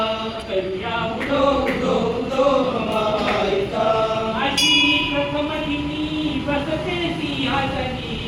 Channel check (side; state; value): both; identical; correlation 1.00